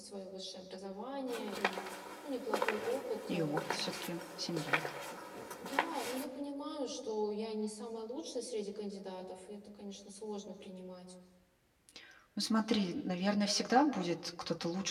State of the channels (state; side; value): identical; both; correlation 1.00